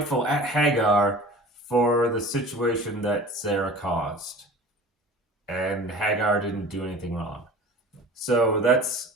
at Hagar for the situation that Sarah caused. And Hagar didn't do anything wrong. So that's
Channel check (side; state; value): both; normal; correlation 0.41